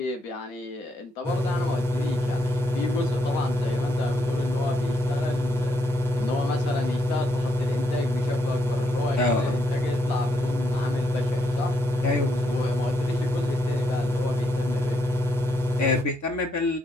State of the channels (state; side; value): normal; both; correlation 0.76